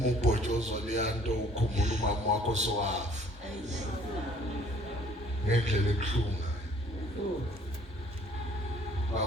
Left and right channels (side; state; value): both; normal; correlation 0.57